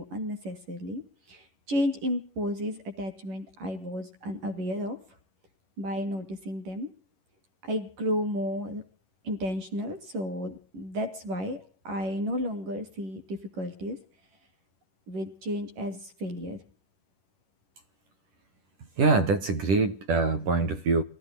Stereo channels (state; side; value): late; left; 11 ms